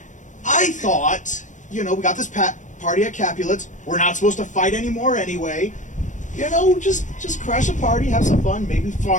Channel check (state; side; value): late; right; 0.36 ms